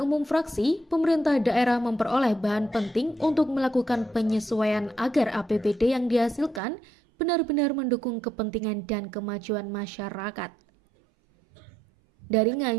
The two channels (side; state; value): left; drops out; at 6.6 s